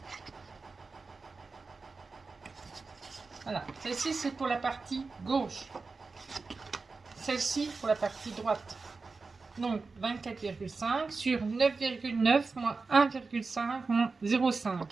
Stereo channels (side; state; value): left; quieter; 4.2 dB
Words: Voilà, celle-ci c'est pour la partie gauche, celle-ci pour la partie droite. Donc 24,5 sur 9,9 moins 1,5 moins 0,5.